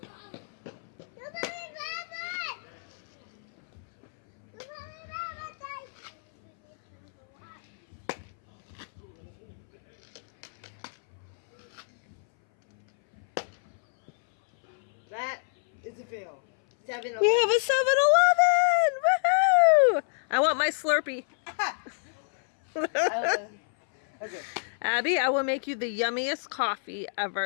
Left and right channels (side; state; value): right; silent; 59 dB below the other